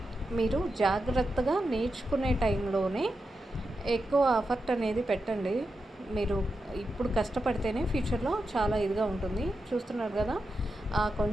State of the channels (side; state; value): both; normal; correlation 0.88